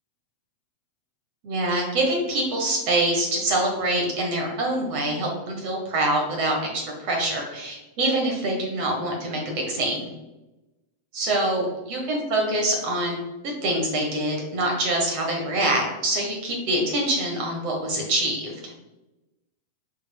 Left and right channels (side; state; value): left; late; 7.8 ms